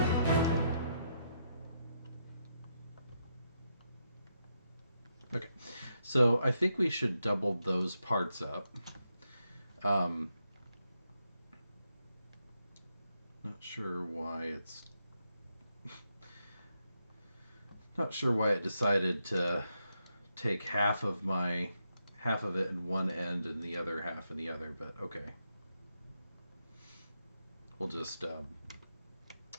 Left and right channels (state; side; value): inverted; both; correlation -0.81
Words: Okay, so I think we should double those parts up. Um, not sure why it's not sure why it decided to take half of it in one end and the other half in the other, but okay. We'll just